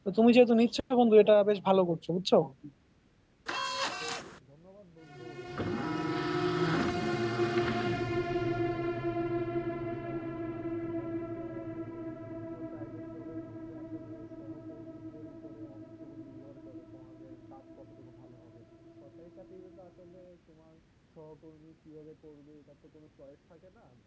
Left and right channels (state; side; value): identical; both; correlation 1.00